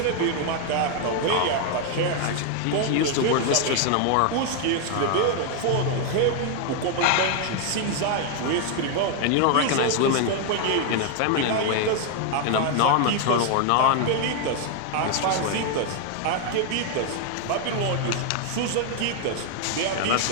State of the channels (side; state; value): both; different; correlation 0.00